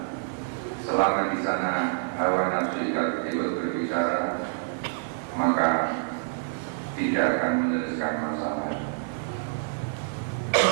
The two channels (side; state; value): left; silent; digital silence